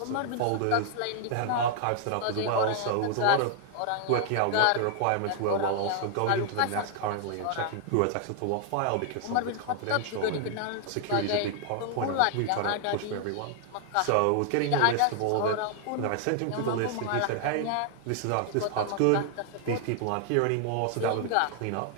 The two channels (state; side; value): different; both; correlation 0.00